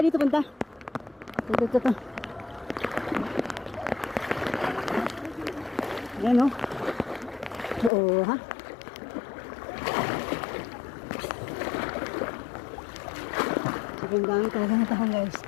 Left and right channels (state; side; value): drops out; right; at 7.9 s